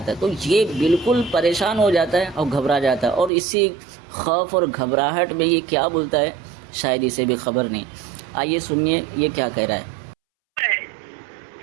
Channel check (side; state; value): left; drops out; at 3.3 s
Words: ہے۔ تو یہ بالکل پریشان ہو جاتا ہے اور گھبرا جاتا ہے، اور اسی خوف اور گھبراہٹ میں یہ کیا بولتا ہے شاید اسے بھی خبر نہیں۔ آئیے سنیے یہ کیا کہہ رہا ہے۔